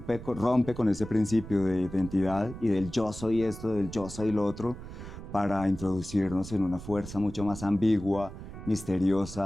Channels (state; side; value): noise; right; rumble, 12 dB below the sound